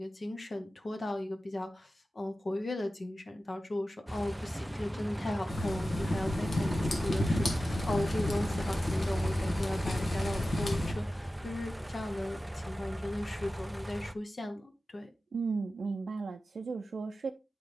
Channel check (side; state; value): both; normal; correlation 0.94